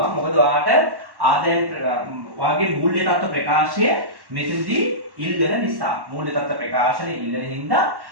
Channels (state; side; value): late; left; 1.1 ms